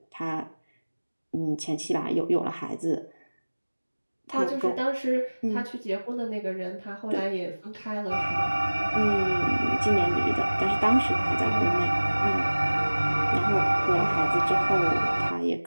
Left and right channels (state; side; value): inverted; both; correlation -1.00